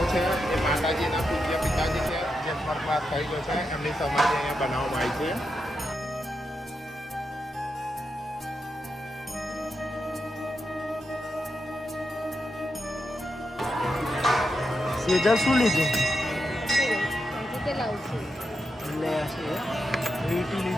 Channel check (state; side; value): normal; both; correlation 0.86